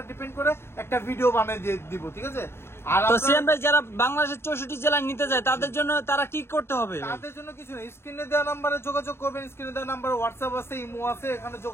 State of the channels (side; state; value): right; late; 0.12 ms